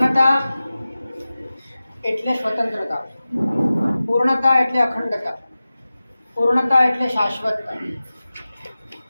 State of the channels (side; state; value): both; inverted; correlation -0.96